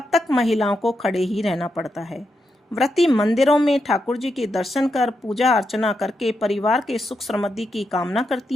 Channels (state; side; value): normal; both; correlation 0.84